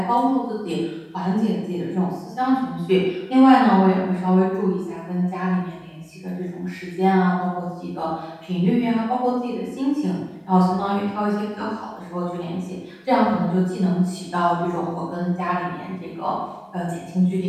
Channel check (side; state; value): both; identical; correlation 1.00